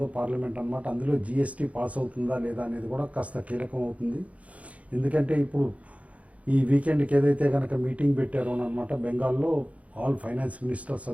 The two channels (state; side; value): late; left; 0.066 ms